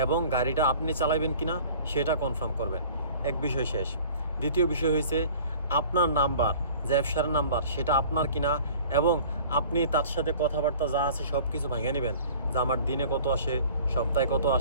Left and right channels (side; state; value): both; inverted; correlation -0.47